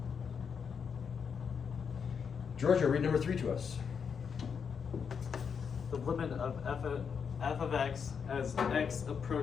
Giorgio, read number 3 to us. The limit of f of x as x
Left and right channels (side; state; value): right; quieter; 6.5 dB